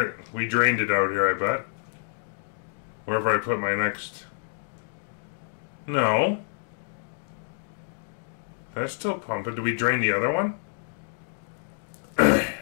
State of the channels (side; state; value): right; silent; digital silence